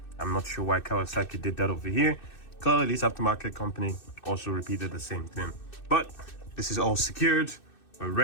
I'm not sure why Kawasaki did that over here. Clearly this aftermarket company also repeated the same thing. But this is all secured. We're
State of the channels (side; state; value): right; late; 2.6 ms